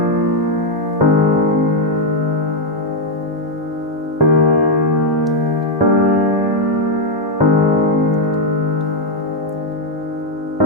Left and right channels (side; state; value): both; normal; correlation 0.00